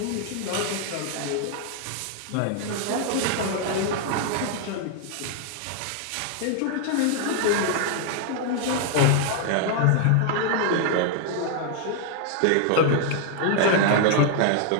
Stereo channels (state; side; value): different; both; correlation 0.00